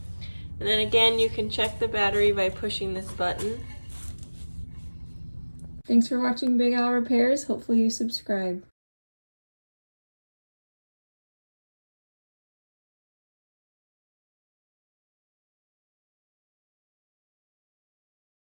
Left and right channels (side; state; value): both; inverted; correlation -1.00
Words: And then again, you can check the battery by pushing this button. Thanks for watching Big Al Repairs. Hopefully you subscribe.